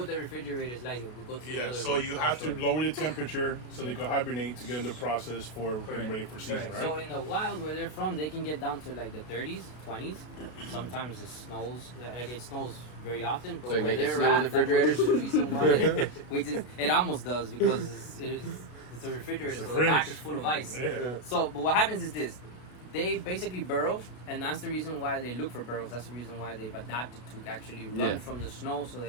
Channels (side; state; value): right; late; 33 ms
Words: the refrigerator is like. We'll go to the other so you have to lower the temperature so they can hibernate to get in the process for getting ready for season, right? So in the wild where they're from, they can get down to like the 30s, 20s. Sometimes it snows. It snows very often. But so you make it snow in the refrigerators? The reason why it almost does because it's a refrigerator, so the back is full of ice. Yeah. So, but what happens is this. They basically burrow, and that's the reason why they look for burrows. That's the reason why they've adapted to actually run from the snow so